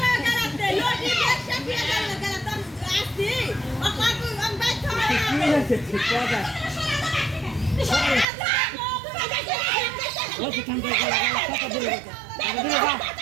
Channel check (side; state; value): left; drops out; at 8.2 s